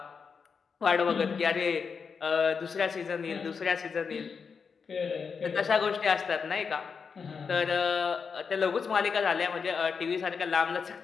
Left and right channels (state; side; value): quieter; right; 5.7 dB